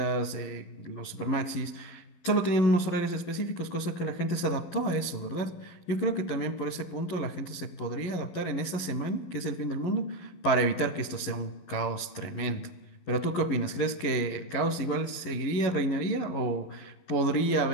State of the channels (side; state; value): right; late; 11 ms